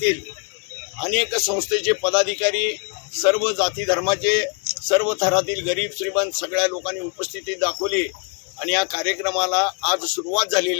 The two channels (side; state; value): right; quieter; 38.5 dB